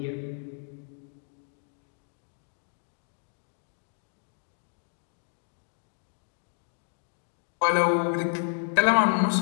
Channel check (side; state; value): right; silent; digital silence